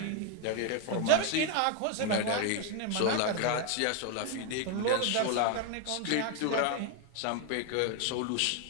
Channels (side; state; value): both; different; correlation 0.01